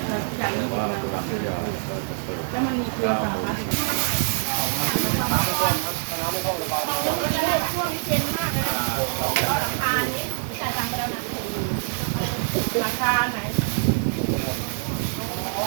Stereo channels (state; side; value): silent; left; digital silence